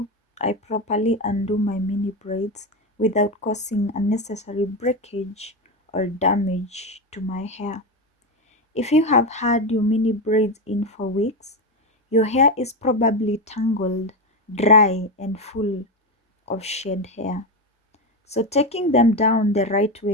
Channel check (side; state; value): both; normal; correlation 0.13